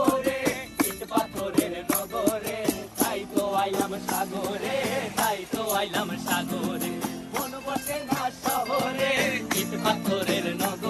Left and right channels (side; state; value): both; identical; correlation 1.00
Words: ইট পাথরের নগরে, তাই তো আইলাম সাগরে, তাই তো আইলাম সাগরে। মন বসে না শহরে, ইট পাথরের